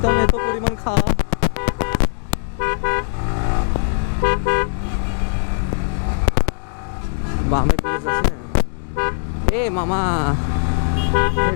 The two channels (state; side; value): silent; right; digital silence